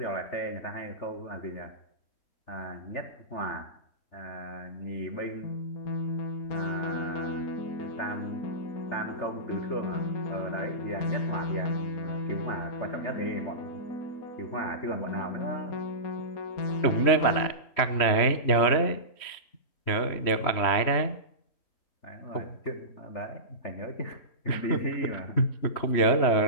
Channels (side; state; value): right; late; 3.1 ms